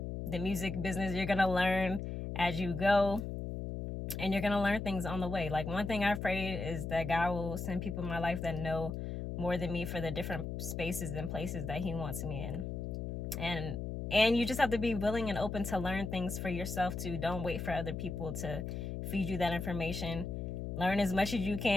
music business. You're going to learn as you go, and you're going to learn things on the way. Like, one thing I've prayed is that God will send people in my life that know more than me for the different spaces and places that he wants me in. And you just have to be willing and open to learn things for yourself too. Don't wait for other people to feed you that information. Learn as much as you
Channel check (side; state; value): left; noise; hum, 5 dB below the sound